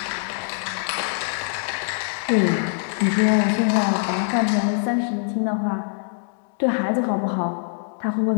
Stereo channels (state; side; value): silent; right; digital silence